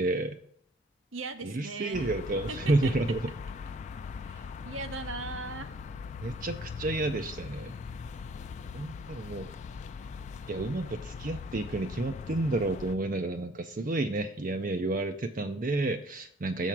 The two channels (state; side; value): normal; both; correlation 0.58